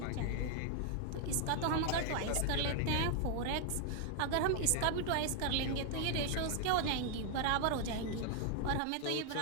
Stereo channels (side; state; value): both; different; correlation 0.00